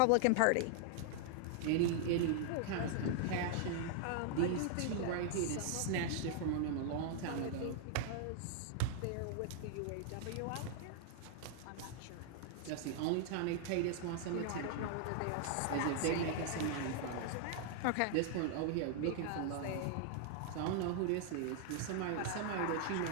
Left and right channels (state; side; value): different; both; correlation 0.00